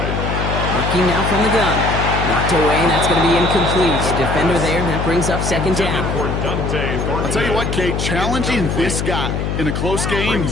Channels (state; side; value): noise; left; hum, 1 dB below the sound